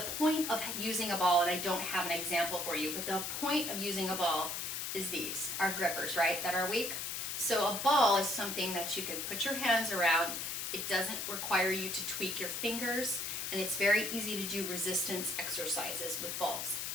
point of using a ball, and I don't have an example for you, but the point of using a ball is these, our grippers, right, that are weak. So a ball is something that you can put your hands around. It doesn't require you to tweak your fingers, and it's very easy to do resistance exercises with balls,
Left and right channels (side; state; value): left; noise; hiss, 3 dB below the sound